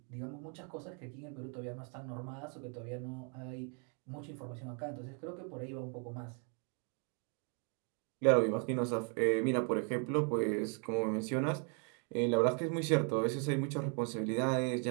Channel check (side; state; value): left; quieter; 39.4 dB